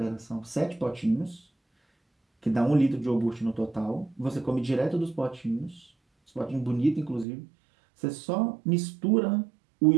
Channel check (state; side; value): drops out; left; at 7.2 s